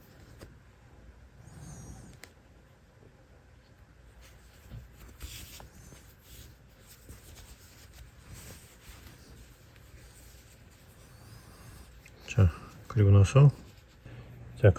그리고 나서 자,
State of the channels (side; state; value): both; identical; correlation 1.00